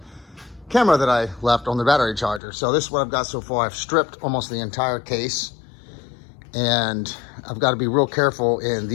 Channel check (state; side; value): drops out; right; at 2.4 s